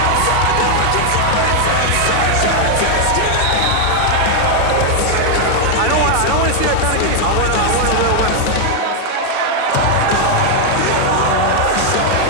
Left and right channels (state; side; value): different; both; correlation 0.00